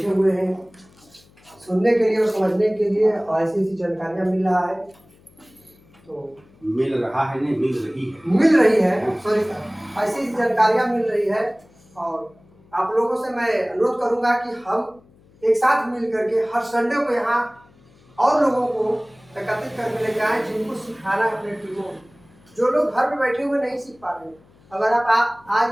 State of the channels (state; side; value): noise; left; hum, 29 dB below the sound